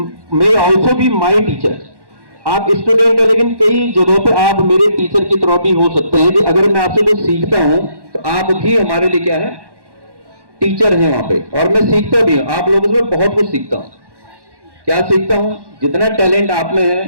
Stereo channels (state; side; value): late; left; 1.1 ms